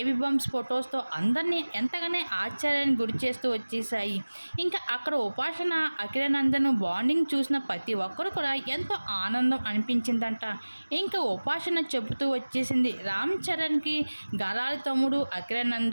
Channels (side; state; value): both; inverted; correlation -1.00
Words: బంప్స్ ఫొటోస్తో అందరినీ ఎంతగానో ఆశ్చర్యానికి గురి చేస్తూ వచ్చేసాయి. అక్కడ ఉపాసన అఖిరానందన్ బాండింగ్ చూసిన ప్రతి ఒక్కరు కూడా ఎంతో ఆనందం అనిపించిందంట. ఉపాసన చెబుతూ వచ్చేసింది, రామ్ చరణ్కి గారాల తమ్ముడు